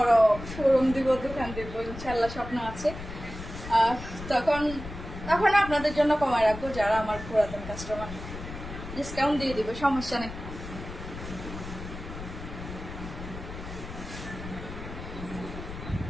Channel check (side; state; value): left; noise; rumble, 10 dB below the sound